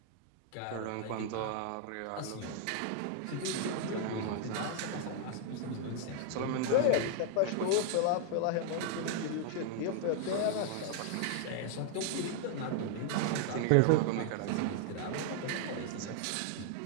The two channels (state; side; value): different; both; correlation 0.00